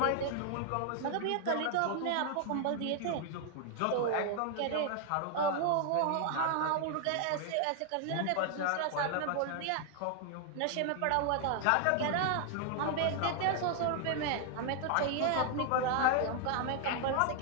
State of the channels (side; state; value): both; different; correlation 0.00